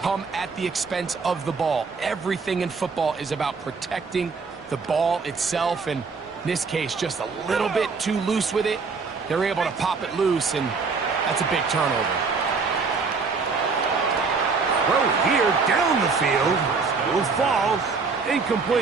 come at the expense of the ball. Everything in football is about protecting the ball itself. And in this case, just a little bit too loose with it. They're able to pop it loose, and that's a big turnover. Throw here down the field. Will fall.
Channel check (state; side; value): quieter; left; 4.8 dB